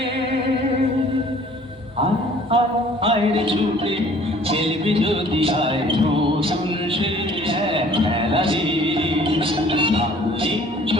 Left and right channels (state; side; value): normal; both; correlation 0.54